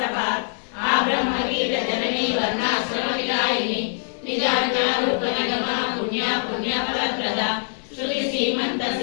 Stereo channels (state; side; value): silent; right; digital silence